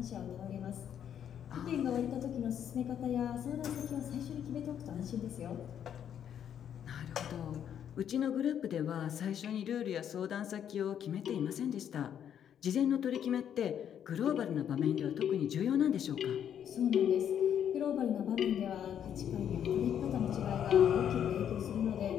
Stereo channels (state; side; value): quieter; right; 9.2 dB